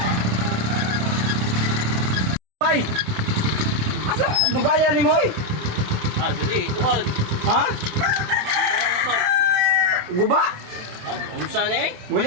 Bay. Asa dugaya ni mo oy? Ah, dili, tuod. Ha? Guba. Ah, unsa ni? Mga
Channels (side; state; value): left; late; 27 ms